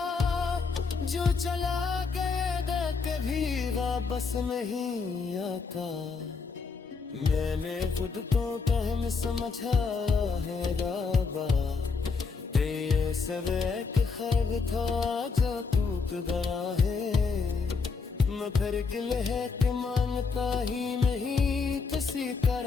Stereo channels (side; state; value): right; quieter; 4.9 dB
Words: जो चला गएगा कभी वापस नहीं आता। मैंने खुद को कहन समझा है बाबा, ये सब एक ख्वाब था जो टूट गया है। मैं फिर गिल है कि मांगता ही नहीं किसी